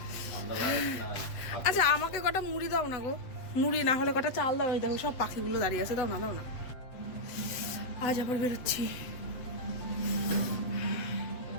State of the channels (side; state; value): right; late; 8.0 ms